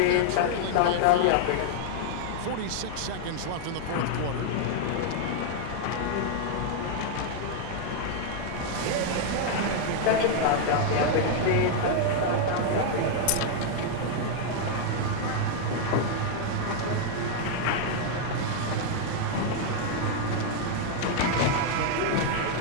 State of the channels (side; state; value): both; different; correlation 0.00